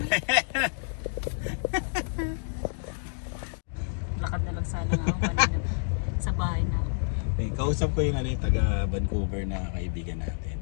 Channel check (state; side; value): silent; right; digital silence